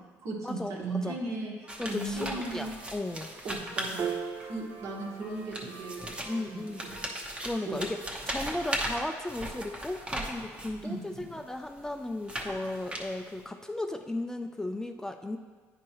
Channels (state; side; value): normal; both; correlation 0.71